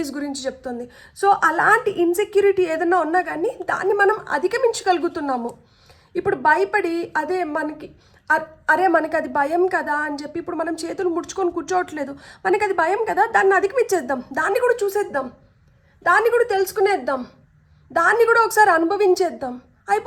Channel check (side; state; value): both; identical; correlation 1.00